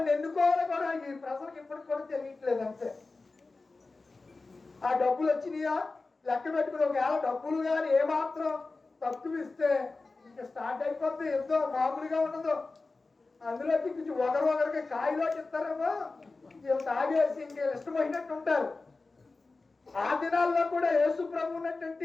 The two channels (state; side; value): quieter; right; 3.7 dB